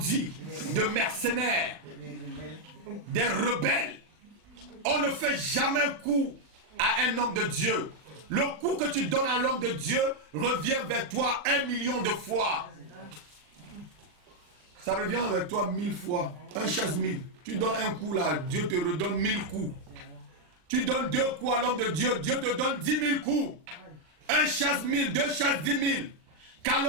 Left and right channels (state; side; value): late; left; 39 ms